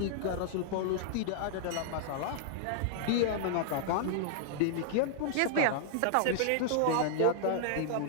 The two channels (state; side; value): different; both; correlation -0.01